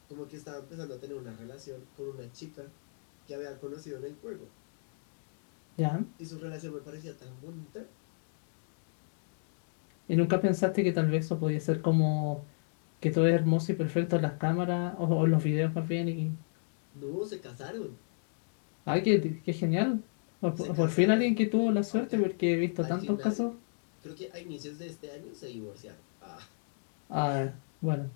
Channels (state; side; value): silent; right; digital silence